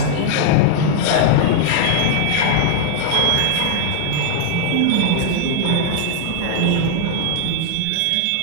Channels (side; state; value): both; different; correlation -0.01